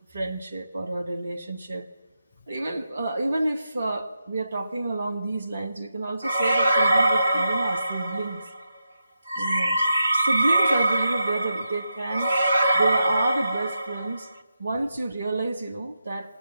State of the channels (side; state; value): both; inverted; correlation -0.87